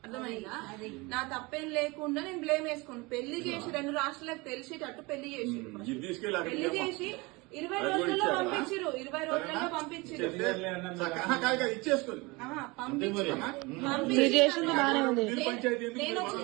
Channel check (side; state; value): left; quieter; 24.9 dB